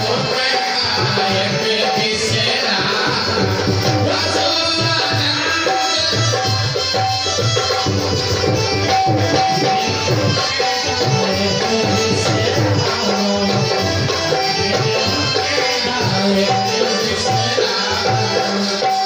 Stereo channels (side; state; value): both; identical; correlation 1.00